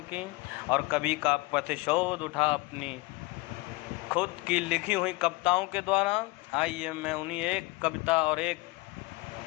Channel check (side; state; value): right; quieter; 23.0 dB